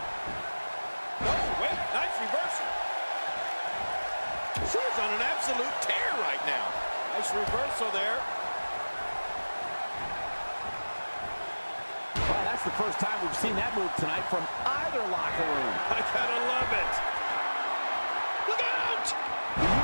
Oh, wait, nice reversal. She's on an absolute tear right now. Nice reversal there. Well, that's the first time we've seen that move tonight from either locker room. I gotta love it. Look out! The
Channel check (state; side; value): inverted; both; correlation -1.00